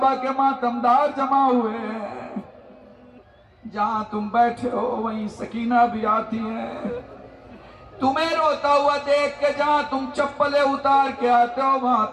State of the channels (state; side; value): identical; both; correlation 1.00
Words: کے ماتمدار جمع ہوئے ہیں، جہاں تم بیٹھے ہو وہیں سکینہ بھی آتی ہے، تمہیں روتا ہوا دیکھ کے جہاں تم چپلیں اتار کے آتے ہو وہاں